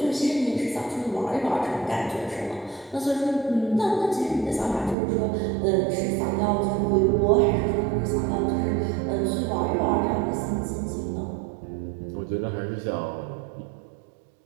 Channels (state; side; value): drops out; left; at 5.0 s